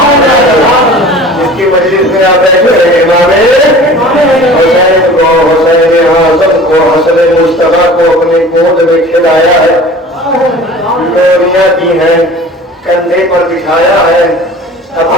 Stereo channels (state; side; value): normal; both; correlation 0.42